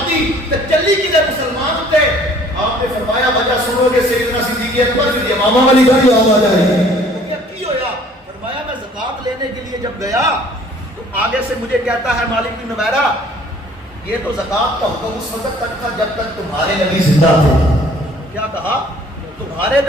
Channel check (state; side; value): normal; both; correlation 0.55